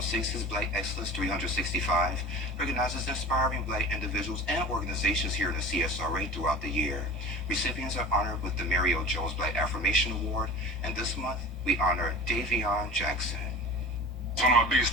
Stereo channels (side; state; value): both; normal; correlation 0.37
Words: 6's Black Excellence 365 recognizes inspiring Black individuals and organizations here in the CSRA throughout the year. Recipients are honored with the Mary O. Jones Black Affirmation Award, and this month we honor Davion Jackson. One of my biggest